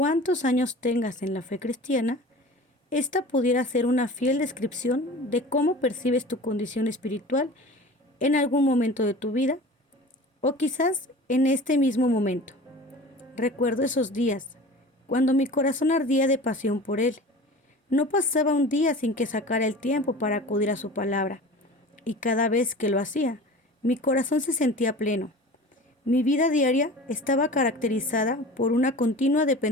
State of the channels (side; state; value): both; normal; correlation 0.38